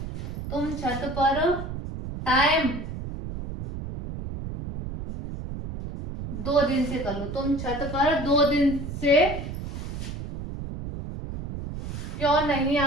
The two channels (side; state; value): right; noise; rumble, 7 dB below the sound